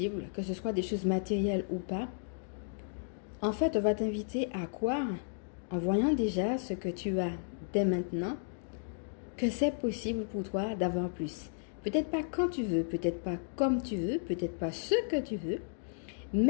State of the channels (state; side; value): silent; right; digital silence